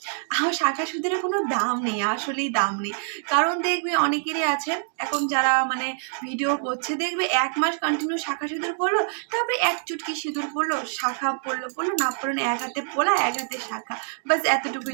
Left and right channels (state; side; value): silent; left; digital silence